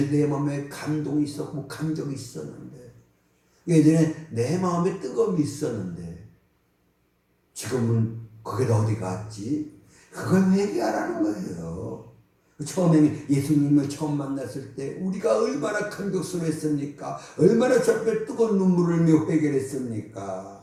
내 마음에 감동이 있었고 감정이 있었는데, 예전에 내 마음에 뜨거움이 있었는데 지금은 그게 다 어디 갔지? 그걸 회개하라는 거예요. 처음에 예수님을 처음 만났을 때 우리가 얼마나 감격스러웠습니까? 얼마나 저 앞에 뜨거운 눈물을 흘며 회개를 했습니까?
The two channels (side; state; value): both; identical; correlation 1.00